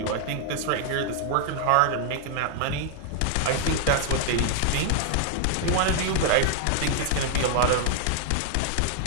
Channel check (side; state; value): both; different; correlation 0.00